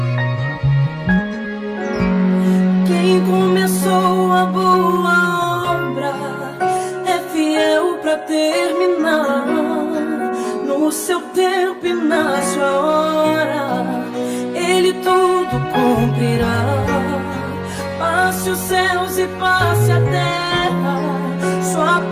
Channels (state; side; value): identical; both; correlation 1.00